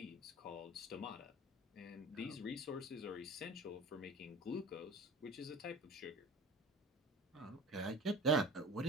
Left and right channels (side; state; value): both; normal; correlation 0.38